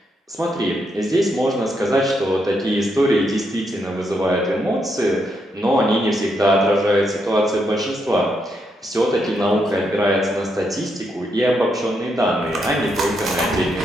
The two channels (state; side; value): normal; both; correlation 0.79